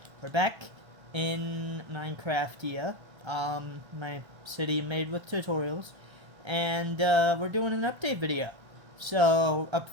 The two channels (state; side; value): late; left; 1.3 ms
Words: We're back in Minecraftia, my city made with tutorials, and, we're doing an update video. So, up